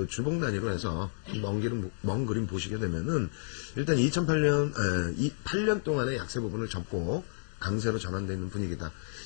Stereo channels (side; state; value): right; silent; digital silence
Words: 주봉 단위로 해서 먼 그림 보시게 되면은 일단 8년 동안의 약세 부분을 접고 강세로 전환되어 있는 분위기다.